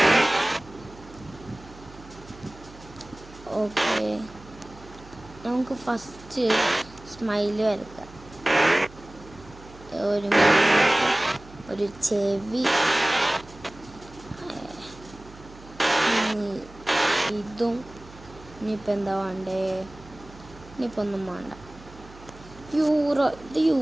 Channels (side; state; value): right; noise; hum, 20 dB below the sound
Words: ഓക്കെ, നമുക്ക് ഫസ്റ്റ് സ്മൈല് വരയ്ക്കാം. ഒരു ചെവി, ഇതും. ഇനിയിപ്പോൾ എന്താ വേണ്ടേ? ഇനിയിപ്പോൾ ഒന്നും വേണ്ട. ഇത്